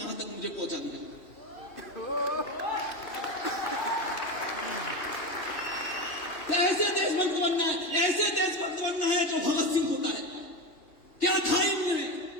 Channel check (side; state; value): right; late; 3.2 ms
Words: तक मुझे पहुंचा दिया। ऐसे देशभक्त बनना है, ऐसे देशभक्त बनना है जो भगत सिंह होता है। क्या था